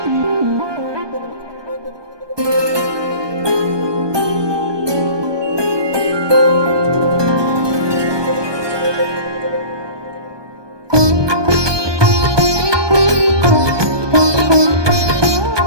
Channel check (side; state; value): left; late; 1.2 ms